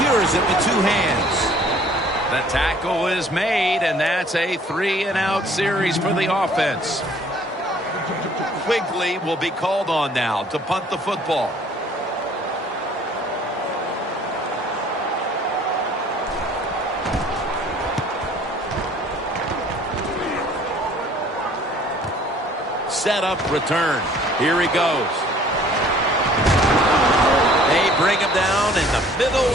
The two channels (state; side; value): normal; both; correlation 0.55